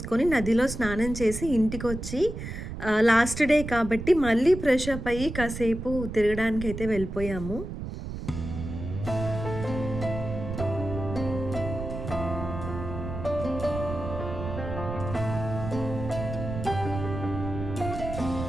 నదిలో స్నానం చేసి ఇంటికి వచ్చి లాస్ట్ డే కాబట్టి మళ్ళీ ఫ్రెష్ అప్ అయ్యి కాసేపు తిరగడానికి అయితే వెళ్ళిపోయాము.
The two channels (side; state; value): right; noise; rumble, 7 dB below the sound